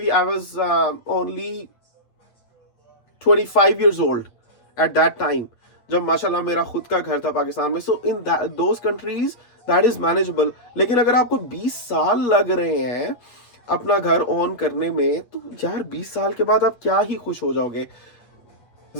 I was only 25 years old at that time, जब माशाल्लाह मेरा खुद का घर था पाकिस्तान में। So in those countries that is manageable। लेकिन अगर आपको 20 साल लग रहे हैं अपना घर ऑन करने में, तो यार 20 साल के बाद आप क्या ही खुश हो जाओगे।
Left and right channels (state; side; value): late; right; 8.3 ms